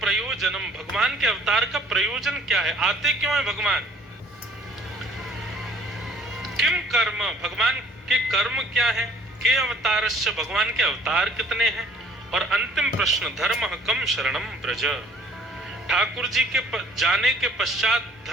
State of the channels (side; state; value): both; normal; correlation 0.57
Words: भगवान के अवतार का प्रयोजन क्या है? आते क्यों है भगवान? किम कर्म, भगवान के कर्म क्या है? के अवतारश्च, भगवान के अवतार कितने हैं? और अंतिम प्रश्न, धर्म कम शरणम ब्रज, ठाकुर जी के जाने के पश्चात